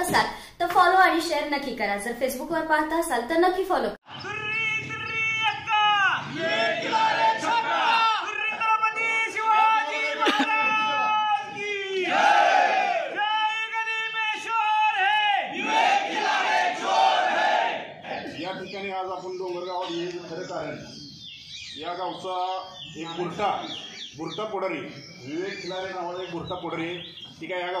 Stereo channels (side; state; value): both; identical; correlation 1.00